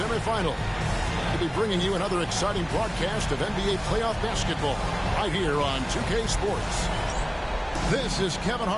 We'll be bringing you another exciting broadcast of NBA playoff basketball right here on 2K Sports. This is Kevin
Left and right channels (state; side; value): identical; both; correlation 1.00